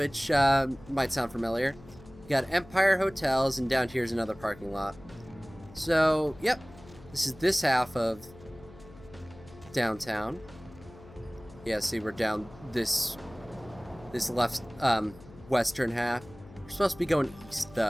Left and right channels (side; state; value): left; noise; hum, 20 dB below the sound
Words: might sound familiar. We got Empire Hotels, and down here's another parking lot. So, yep. This is this half of downtown. Yeah, see, we're down this left, western half. We're supposed to be going east,